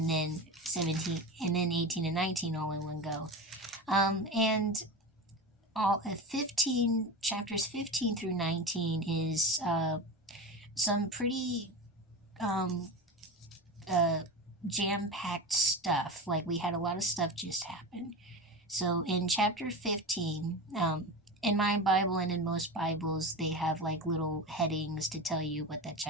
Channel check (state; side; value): normal; both; correlation 0.24